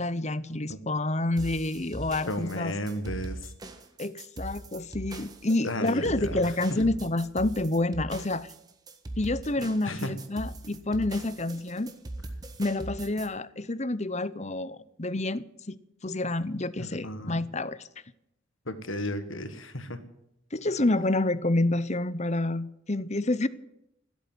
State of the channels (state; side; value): normal; both; correlation 0.58